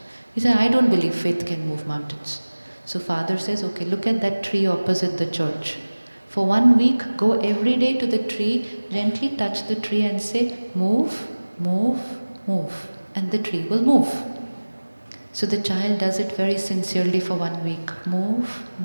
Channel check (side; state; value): both; inverted; correlation -1.00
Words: He said, I don't believe faith can move mountains. So father says, okay, look at that tree opposite the church. For 1 week, go every day to the tree, gently touch the tree and say, move, move, move. And the tree will move. So the child does it very sincerely for 1 week. Move,